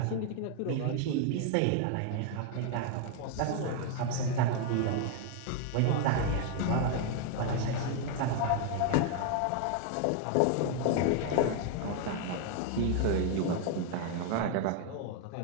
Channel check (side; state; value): both; different; correlation 0.00